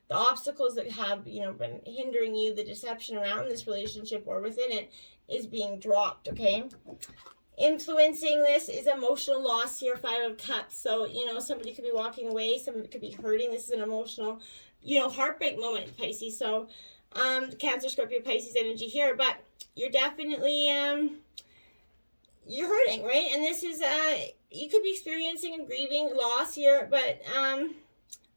the obstacles that have, been hindering you, the deception around this relationship or within it is being dropped, okay? Influencing this is emotional loss here, 5 of Cups. So, somebody could be walking away, somebody could be hurting. This is an emotional, heartbreak moment, Pisces. So, Cancer, Scorpio, Pisces energy here. But you're definitely, you're hurting, right? And this is, you could be experiencing and grieving loss here, but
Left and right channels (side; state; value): both; inverted; correlation -1.00